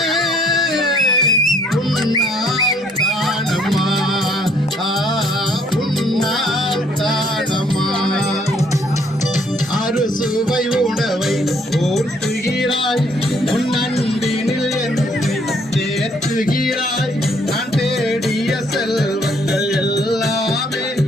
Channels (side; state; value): both; normal; correlation 0.64